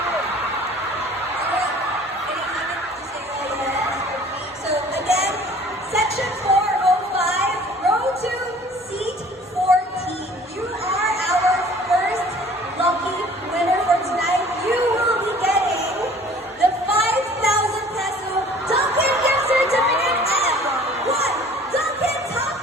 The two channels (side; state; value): both; normal; correlation 0.50